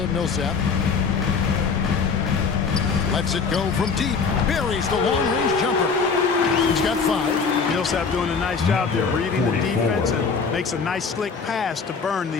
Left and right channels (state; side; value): quieter; right; 5.3 dB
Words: Millsap. Lets it go from deep. Buries the long-range jumper. He's got 5. Millsap doing a nice job there, reading the defense and makes a nice slick pass to burn